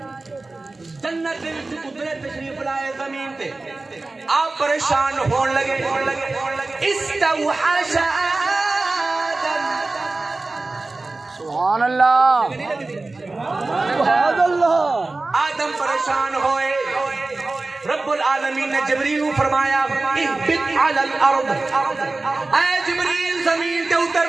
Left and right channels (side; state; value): left; quieter; 3.3 dB